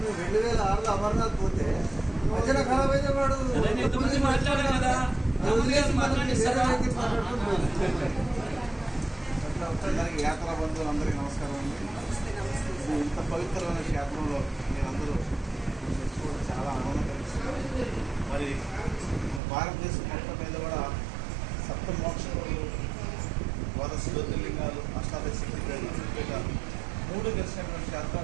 2006లో అమర్నాథ్ పోతే మధ్యన ఖరాబ్ అయితే వాడు అందరికీ యాత్రా బంధువులందరికీ నమస్కారం అండి. ఇంత పవిత్రమైన క్షేత్రంలో మీరందరూ తెచ్చుకోవడం చాలా ఆనందం కలిగిస్తుంది. మరి భారతదేశం మొత్తం మీద కూడా సప్త మోక్షములు, ద్వాదశ జ్యోతిర్లింగాలు, అష్టాదశ శక్తిపీఠాలు 3 గెలిచినటువంటి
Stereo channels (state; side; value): drops out; left; at 19.4 s